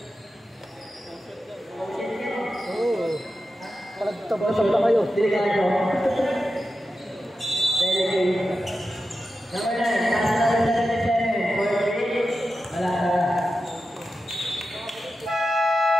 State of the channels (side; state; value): both; normal; correlation 0.91